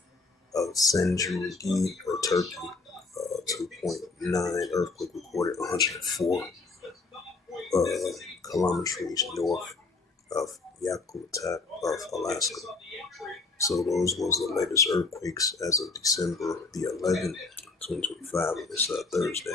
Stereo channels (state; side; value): quieter; right; 3.9 dB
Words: of Senjugi, or Turkey. 2.9 earthquake recorded 104 kilometers north of Yakutat of Alaska. So those was the latest earthquakes as of December the 11th. 2025 on this